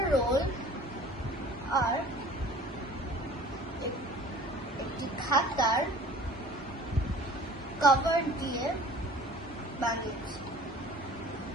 রোল আর একটি খাতার কভার দিয়ে বানিয়েছি।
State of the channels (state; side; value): normal; both; correlation 0.46